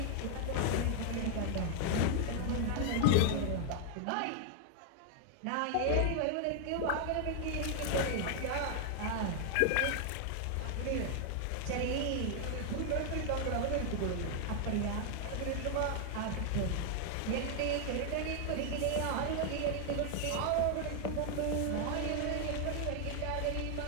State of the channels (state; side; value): different; both; correlation 0.00